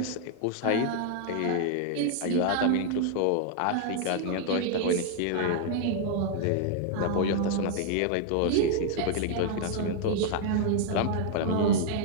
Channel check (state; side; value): different; both; correlation 0.00